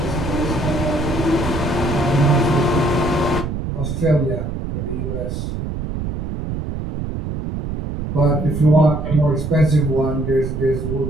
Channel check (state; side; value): noise; right; rumble, 4 dB below the sound